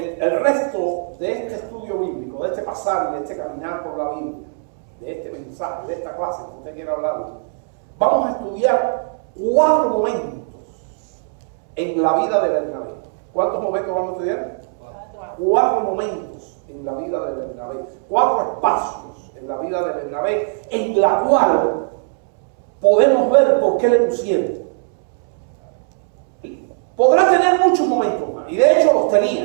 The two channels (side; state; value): left; silent; 66 dB below the other